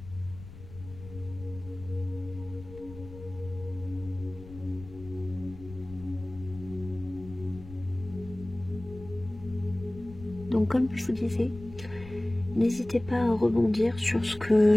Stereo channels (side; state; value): left; noise; rumble, 16 dB below the sound